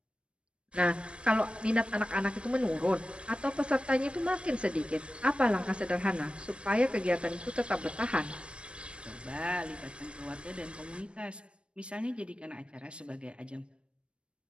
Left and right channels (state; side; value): late; left; 0.058 ms